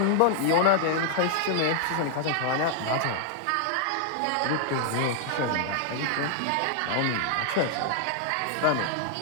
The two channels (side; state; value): both; different; correlation 0.00